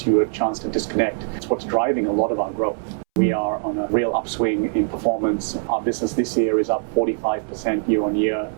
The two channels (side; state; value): left; silent; 64 dB below the other